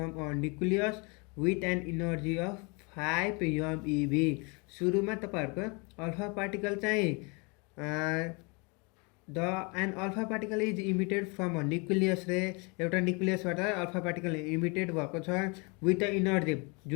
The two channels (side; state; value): right; quieter; 30.9 dB